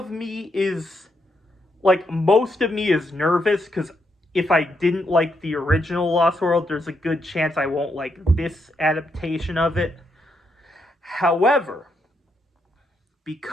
me is, like, most of me is nervous, because if I didn't like the original Lost World, there's a good chance I won't like this adaptation of it. However,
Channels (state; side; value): normal; both; correlation 0.79